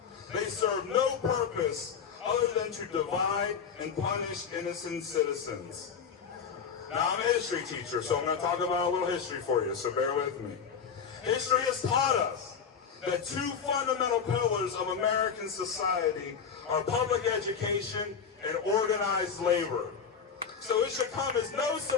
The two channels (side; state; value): right; quieter; 6.6 dB